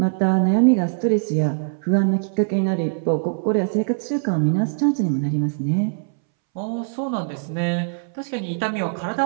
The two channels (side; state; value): left; silent; 64 dB below the other